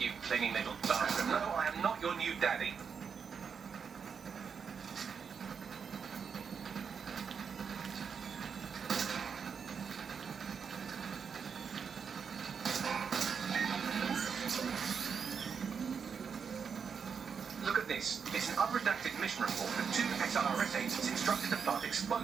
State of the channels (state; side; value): quieter; left; 6.4 dB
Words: clinging little bastard. No, I am not your new daddy. Look at this. It's an unredacted mission report that 2 SRS agents instructed to plant